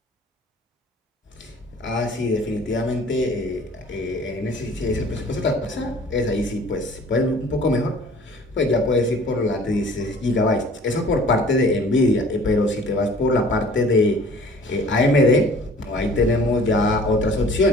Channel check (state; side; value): normal; both; correlation 0.49